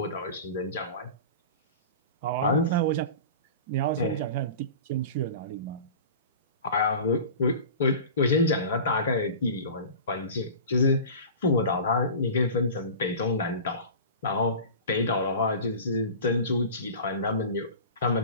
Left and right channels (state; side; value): inverted; both; correlation -0.35